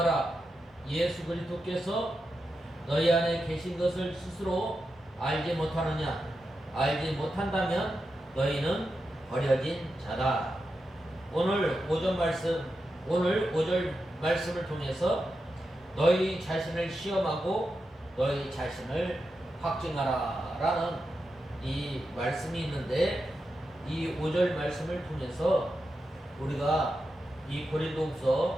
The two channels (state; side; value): normal; both; correlation 0.88